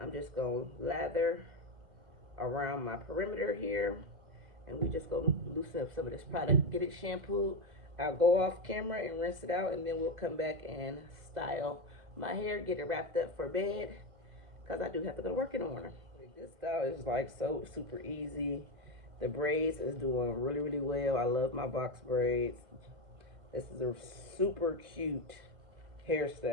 just going to lather around my perimeter here, and we just going to loosen up some of this product, get it shampooed. I'll go off camera and rinse it out, and then we'll come back and style my hair, get it wrapped up for bed, because I do have to go to work in the morning. This style is like so super easy. The braids is doing really, really well. I love my box braids. This is a super cute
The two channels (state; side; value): late; left; 2.0 ms